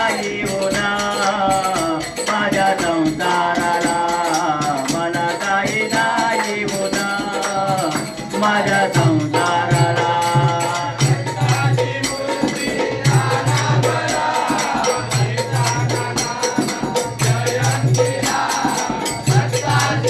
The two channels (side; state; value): both; identical; correlation 1.00